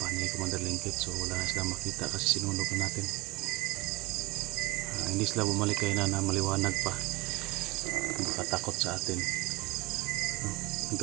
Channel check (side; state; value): left; quieter; 22.1 dB